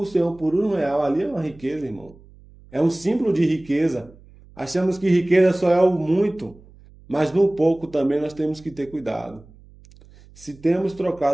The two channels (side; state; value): right; noise; hum, 24 dB below the sound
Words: o Senhor por R$ 1, ali é uma riqueza, irmão. É um símbolo de riqueza. Achamos que riqueza só é o muito, mas no pouco também nós temos que ter cuidado. Se temos